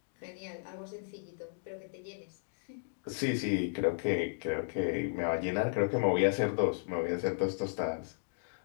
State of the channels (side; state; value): right; silent; digital silence